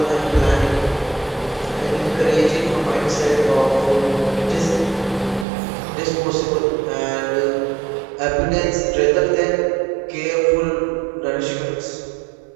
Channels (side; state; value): left; drops out; at 5.5 s